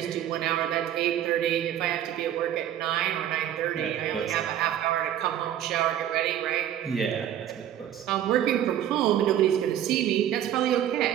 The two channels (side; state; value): left; quieter; 11.0 dB